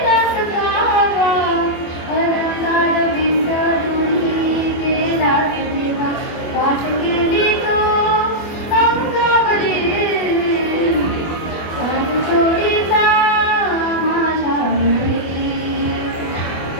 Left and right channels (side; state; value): right; late; 24 ms